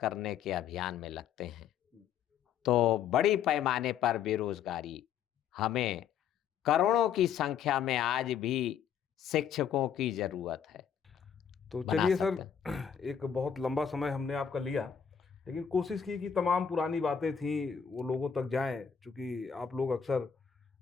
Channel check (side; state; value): right; quieter; 7.9 dB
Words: के अभियान में लगते हैं तो बड़ी पैमाने पर बेरोजगारी, हमें करोड़ों की संख्या में आज भी शिक्षकों की जरूरत है। तो बना चलिए सकते सर, एक बहुत लंबा समय हमने आपका लिया, लेकिन कोशिश की कि तमाम पुरानी बातें थी वो लोगों तक जाएं, क्योंकि आप लोग अक्सर